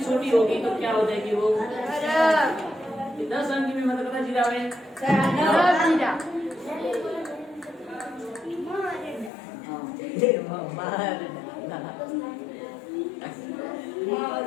छोटी होगी तो क्या हो जाएगी वो 10 अंक में मतलब कितना जीरा है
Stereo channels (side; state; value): right; drops out; at 9.3 s